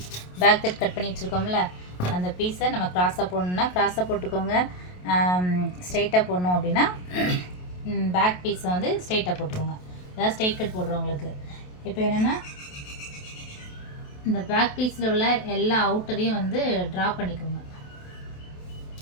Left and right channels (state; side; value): late; right; 28 ms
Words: பேக் கட் பண்ணி வச்சுருக்கோம்ல, அந்த பீஸை நம்ம க்ராஸாக போடணுன்னா க்ராஸாக போட்டுக்கோங்க. ஸ்ட்ரைட்டாக போடணும் அப்படின்னா பேக் பீஸை வந்து ஸ்ட்ரைட்டாக போட்டுக்கோங்க. அதாவது ஸ்ட்ரைட் கட் போடுறவங்களுக்கு. இப்போ என்னென்னா, இந்த பேக் பீஸில் உள்ள எல்லா அவுட்டரையும் வந்து ட்ரா பண்ணிக்கோங்க.